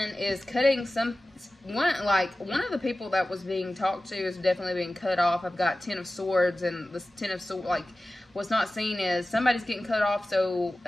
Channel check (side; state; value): both; normal; correlation 0.96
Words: is cutting one of the people that was being talked to is definitely being cut off. I've got 10 of Swords, and this 10 of Swords, like, what's not seen is somebody's getting cut off so